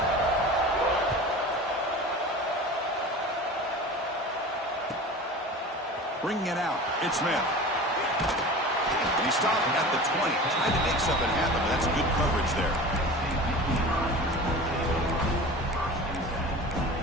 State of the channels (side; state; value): both; normal; correlation 0.36